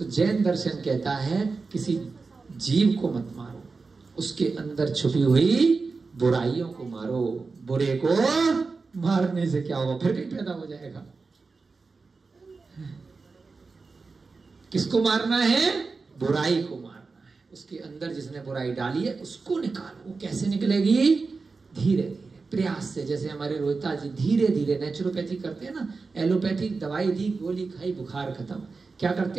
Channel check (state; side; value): quieter; left; 4.3 dB